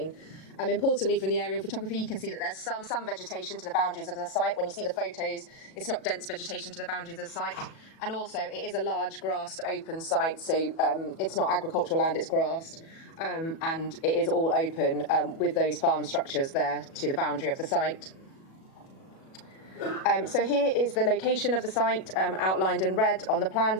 Importantly, from the aerial photography, you can see that there's some vegetation to the boundaries of the site. When you see the photos, it's not dense vegetation to the boundaries of the site. And also, it is a large grassed open site, so it's not agricultural land, it's grassed. And it is all open with those farm structures there to the boundary of the site. So here is the location of the site outlined in red on the plan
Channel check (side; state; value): right; late; 37 ms